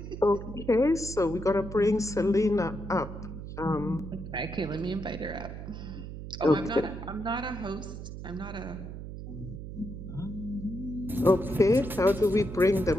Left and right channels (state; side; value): noise; right; hum, 9 dB below the sound